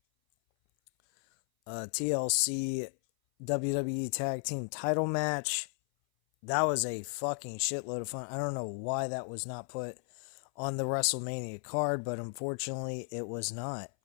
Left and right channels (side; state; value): right; silent; 55 dB below the other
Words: TLC WWE Tag Team title match. That was a fucking shitload of fun. I don't know why that was not put on the WrestleMania card, but unfortunately it was not.